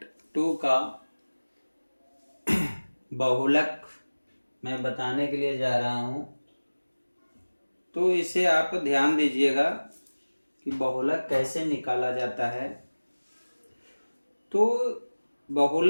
का बहुलक मैं बताने के लिए जा रहा हूँ। तो इसे आप ध्यान दीजिएगा कि बहुलक कैसे निकाला जाता है। तो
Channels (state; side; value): inverted; both; correlation -1.00